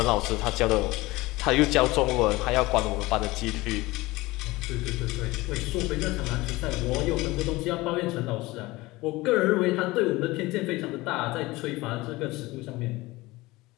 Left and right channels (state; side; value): quieter; right; 20.5 dB